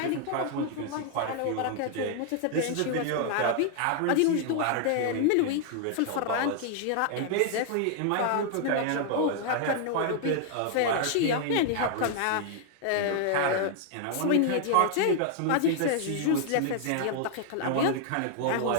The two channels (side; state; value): both; different; correlation 0.00